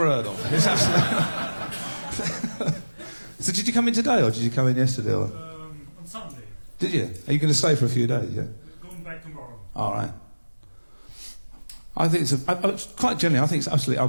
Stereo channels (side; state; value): both; inverted; correlation -1.00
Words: heard of. It's absolutely... So did you come in today, or did you come in yesterday? Or... On Sunday. Did you? Are you going to stay for a few days, yeah? We're going back tomorrow. All right. I think it's quite generally, I think it's absolutely